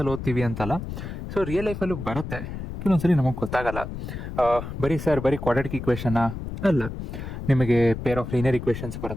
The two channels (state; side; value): noise; left; rumble, 8 dB below the sound